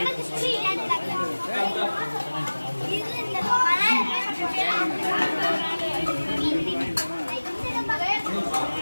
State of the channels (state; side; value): inverted; both; correlation -1.00